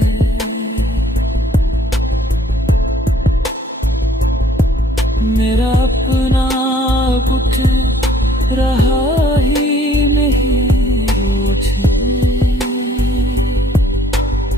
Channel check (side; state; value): both; normal; correlation 0.59